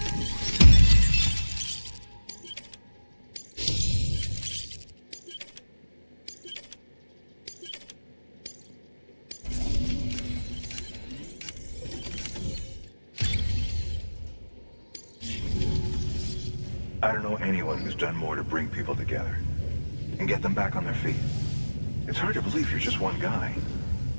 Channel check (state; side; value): inverted; both; correlation -1.00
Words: I don't know anyone who's done more to bring people together and get them back on their feet. It's hard to believe you're just one guy.